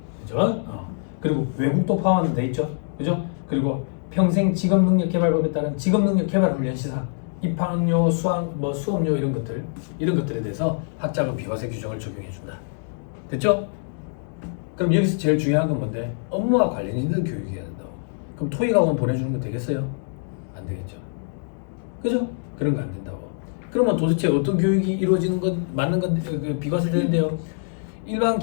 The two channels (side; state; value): right; silent; digital silence